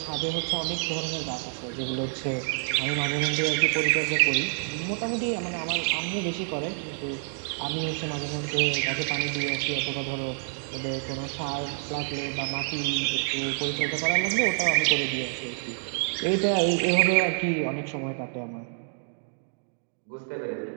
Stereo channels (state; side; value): silent; left; digital silence